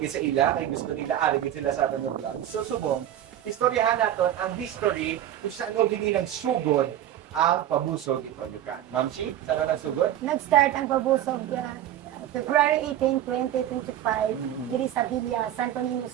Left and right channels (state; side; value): quieter; left; 11.7 dB